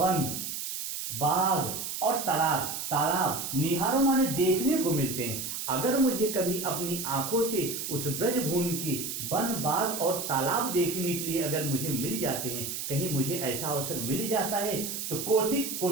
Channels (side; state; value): right; noise; hiss, 5 dB below the sound